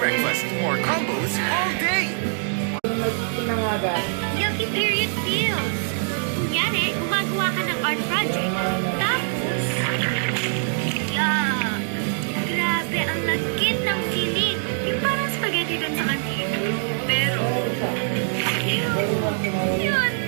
More combos all day. Pinangaga. Yucky period feels. Kunyari, gumagawa ka ng art project. Tapos, yuck. Grabe, ang lagkit ng feeling. Yung parang spaghetti dun sa kantin. Pero, yun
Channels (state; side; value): silent; left; 62 dB below the other